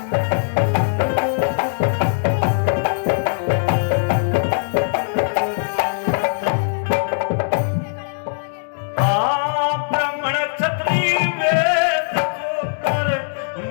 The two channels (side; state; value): right; silent; digital silence